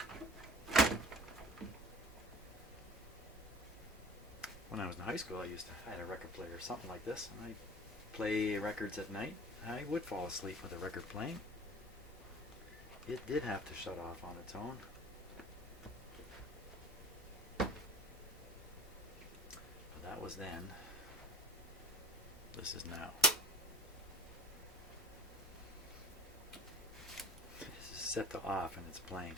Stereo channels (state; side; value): normal; both; correlation 0.44